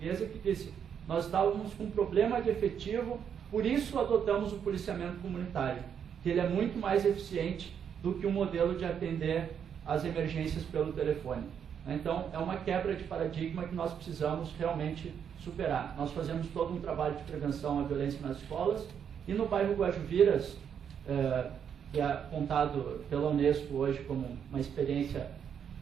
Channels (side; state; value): left; quieter; 8.0 dB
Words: que disse: nós estávamos com um problema de efetivo, por isso adotamos o policiamento comunitário, que ele é muito mais eficiente do que o modelo de atender as emergências pelo telefone. Então, é uma quebra de paradigma que nós precisamos realmente superar. Nós fazemos todo um trabalho de prevenção à violência nas escolas, e no bairro Guajuviras, que é apontado pela Unesco hoje como uma experiência